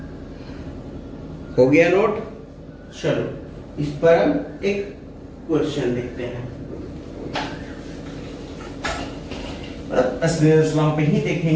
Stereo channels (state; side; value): identical; both; correlation 1.00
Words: हो गया नोट? चलो, इस पर हम एक क्वेश्चन देखते हैं। स्नेल्स लॉ पे ही